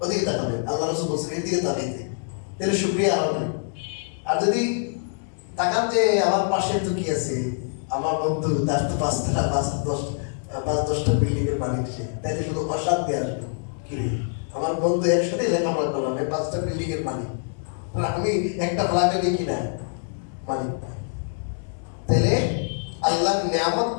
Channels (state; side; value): silent; right; digital silence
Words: ওদিকে তাকাবেন, আল্লাহ রাসূল বলছেন এদিকে তাকাইতে, তাহলে শুকরিয়া হবে। আর যদি তাকান যে আমার পাশে তো কি আছে, আমার বন্ধু, তার তো 5টা 5-10টা বিল্ডিং এর মালিক, সে তাইলে শুধু অশান্তি আসবে। কি আমার বন্ধু একসাথে লেখাপড়া করলাম, 5টা বিল্ডিং এর মালিক, আমি একটা ফ্ল্যাটে দেখি না মালিক। তাহলে আল্লাহর নিয়ামত